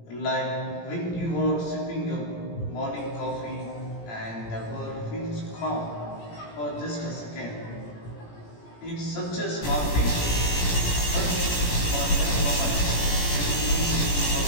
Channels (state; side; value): late; right; 17 ms